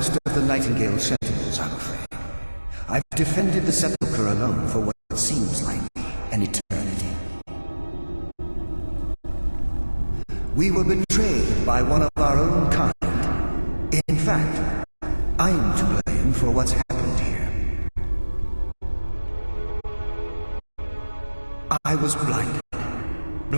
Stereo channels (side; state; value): both; inverted; correlation -1.00